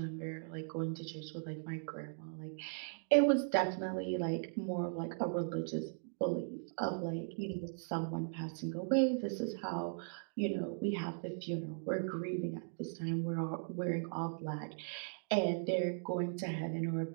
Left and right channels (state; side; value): silent; left; digital silence